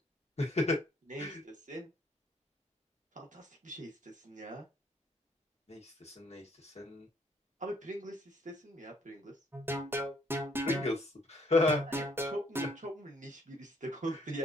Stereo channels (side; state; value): both; normal; correlation 0.66